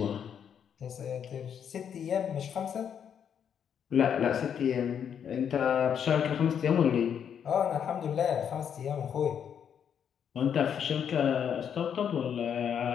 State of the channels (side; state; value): right; quieter; 8.2 dB